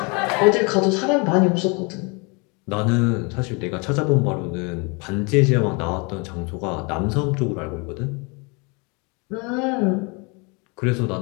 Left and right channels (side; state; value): right; quieter; 30.8 dB